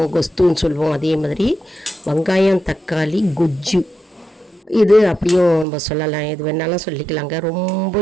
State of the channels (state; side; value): drops out; left; at 5.7 s